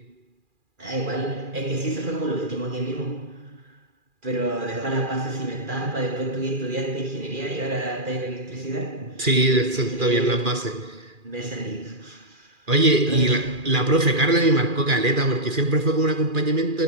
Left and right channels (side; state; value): left; late; 2.4 ms